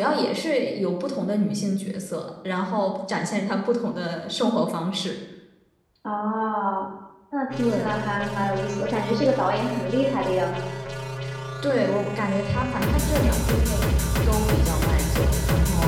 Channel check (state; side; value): identical; both; correlation 1.00